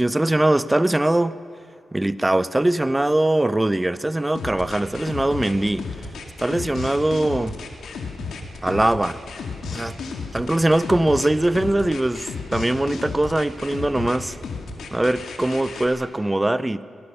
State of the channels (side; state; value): both; normal; correlation 0.98